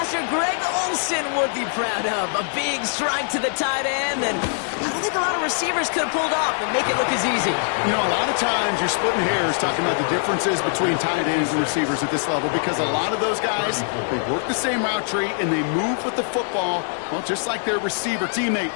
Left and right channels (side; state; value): right; silent; digital silence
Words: Greg Olson would be proud of. A big strike to the tight end, and I don't think a lot of receivers could have pulled off and make it look as easy. You know, a lot of times you're splitting hairs talking about the differences between tight ends and receivers at this level because a lot of those guys, they work the same route tree and they move with the football, well, just like their receiver